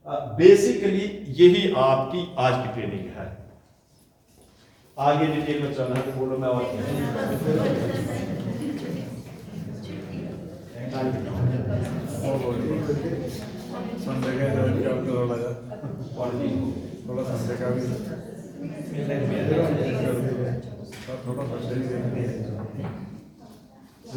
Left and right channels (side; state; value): both; identical; correlation 1.00